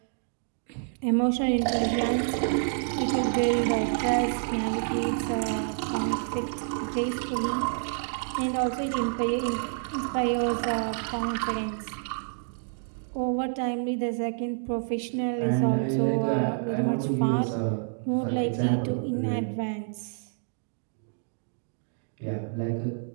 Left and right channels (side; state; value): left; silent; digital silence